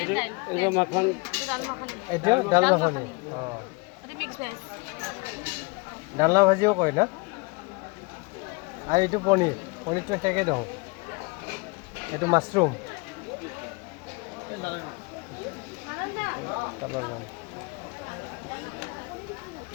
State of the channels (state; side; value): quieter; right; 28.5 dB